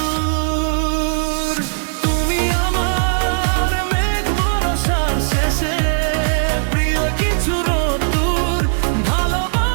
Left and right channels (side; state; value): left; silent; digital silence